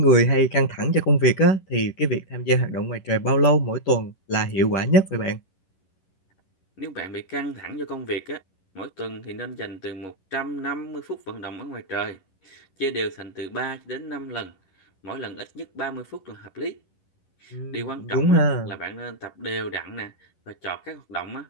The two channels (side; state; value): right; late; 11 ms